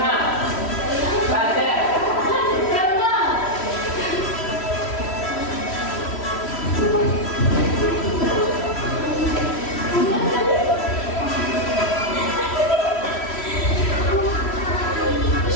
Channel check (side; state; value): right; late; 3.1 ms